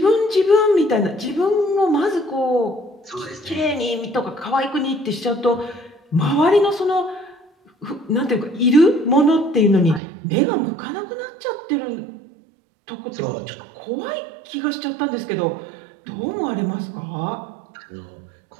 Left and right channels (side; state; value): left; drops out; at 10.0 s